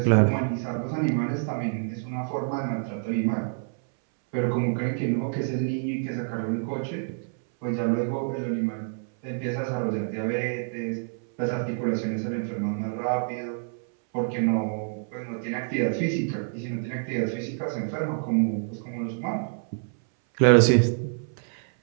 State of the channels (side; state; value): left; silent; 60 dB below the other